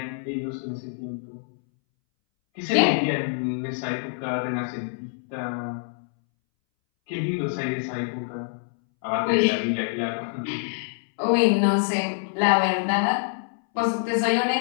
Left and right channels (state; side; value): silent; right; 61 dB below the other